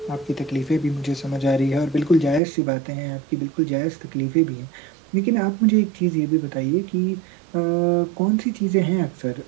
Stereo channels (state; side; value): drops out; left; at 2.4 s